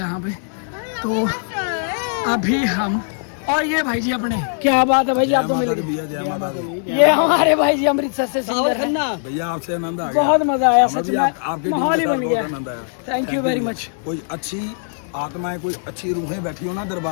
पे। तो अभी हम और ये भाई जी अपने, क्या बात है भाई जी, आप तो मिल गए। ये हमारे भाई जी अमृतसर से सिंगर हैं। भैया आपसे आनंद आ गया, बहुत मजा आया सच में, आपके माहौल ही बन गया। आनंद आया। Thank you very much. कोई अच्छी आत्माएं, कोई अच्छी रूहें बैठी हो ना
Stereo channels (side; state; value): right; silent; digital silence